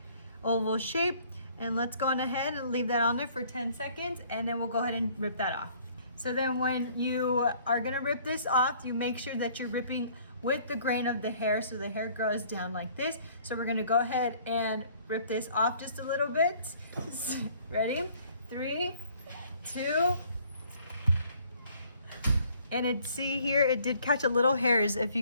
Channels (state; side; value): inverted; both; correlation -0.58